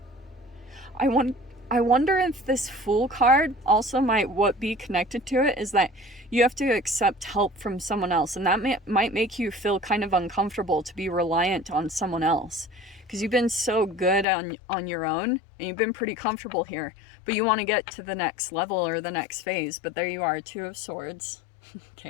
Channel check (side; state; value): right; drops out; at 14.2 s